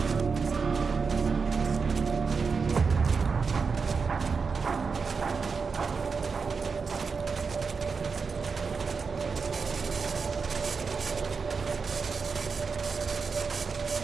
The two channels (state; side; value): quieter; left; 5.1 dB